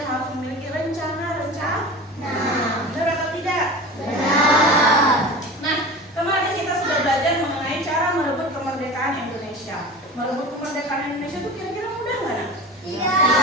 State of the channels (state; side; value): normal; both; correlation 0.33